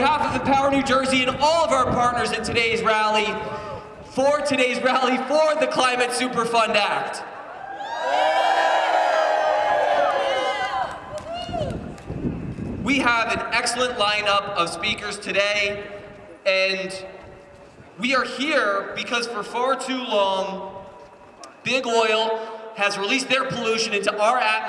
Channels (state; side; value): identical; both; correlation 1.00